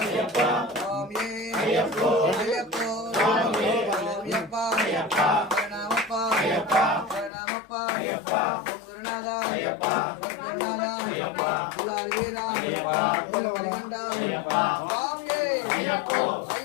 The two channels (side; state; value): right; drops out; at 7.3 s